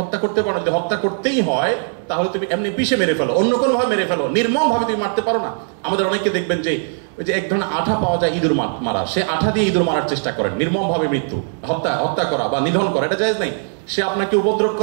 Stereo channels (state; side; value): silent; left; 65 dB below the other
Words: করতে পারো। যদি হত্যা করতেই হয় তাহলে তুমি এমনি পিষে মেরে ফেলো, অন্য কোনো ভাবে মেরে ফেলো, নির্মম ভাবে তুমি মারতে পারো না। আমাদের অনেকে দেখবেন যে ওই যে এক ধরনের আঠা পাওয়া যায় ইঁদুর মারা, সে আঠা দিয়ে ইঁদুর মারার চেষ্টা করেন, নির্মম ভাবে মৃত্যু, হত্যা করা বা নিধন করা, এটা জায়েজ নাই। সে আপনাকে উপদ্রব